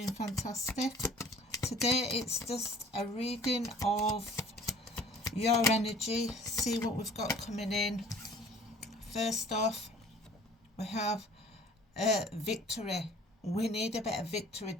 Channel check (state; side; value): normal; both; correlation 0.50